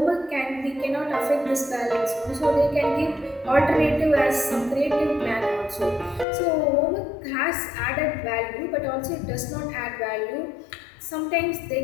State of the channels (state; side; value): drops out; right; at 6.2 s